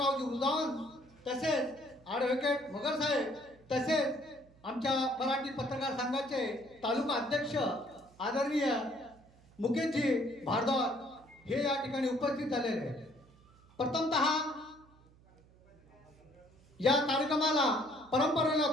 उजावन, तसेच ॲडव्होकेट मगर साहेब, तसेच आमच्या मराठी पत्रकार संघाचे तालुका अध्यक्ष आदरणीय मुकेशजी भारद्वाज हे या ठिकाणी उपस्थित झालेले आहेत. प्रथमतः या कार्यक्रमाला परंपरेला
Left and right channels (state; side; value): noise; right; hum, 27 dB below the sound